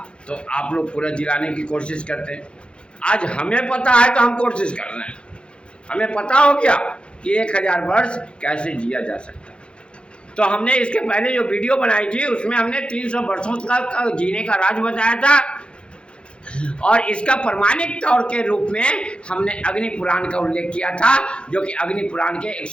तो आप लोग पूरा जिलाने की कोशिश करते। आज हमें पता है तो हम कोशिश कर रहे हैं। हमें पता हो गया कि 1000 वर्ष कैसे जिया जा सकता है। तो हमने इसके पहले जो वीडियो बनाई थी उसमें हमने 300 वर्षों का जीने का राज बताया था, और इसका प्रमाणिक तौर के रूप में हमने अग्नि पुराण का उल्लेख किया था, जो कि अग्नि पुराण के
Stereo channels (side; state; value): right; late; 0.056 ms